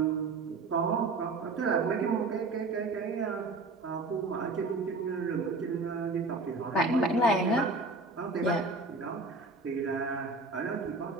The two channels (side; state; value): left; quieter; 3.4 dB